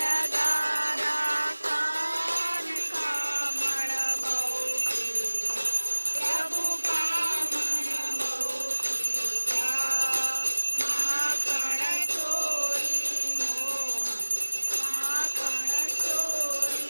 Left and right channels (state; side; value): inverted; both; correlation -1.00